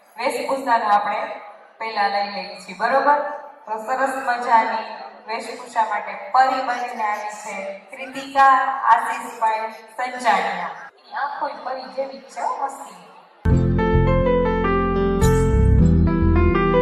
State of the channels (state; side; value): identical; both; correlation 1.00